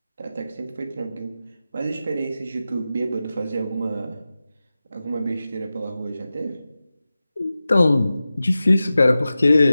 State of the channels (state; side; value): inverted; both; correlation -0.94